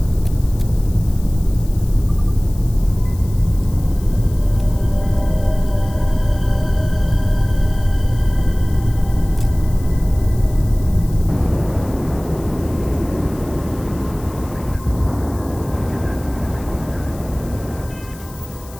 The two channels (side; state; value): left; noise; hiss, 21 dB below the sound